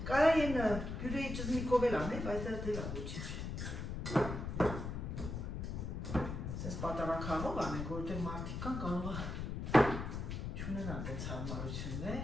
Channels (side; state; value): left; noise; rumble, 4 dB below the sound